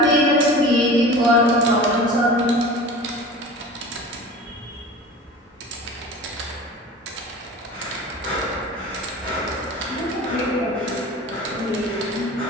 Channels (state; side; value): normal; both; correlation 0.37